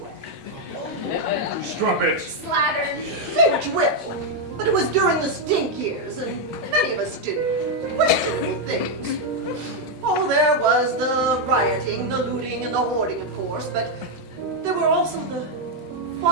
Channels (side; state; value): both; normal; correlation 0.01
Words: Strumpet. Slattern. Say what you will, but it was during the stink years, and many of us did questionable things. Oh, there was the rioting, the looting, and the hoarding, of course, but there were also the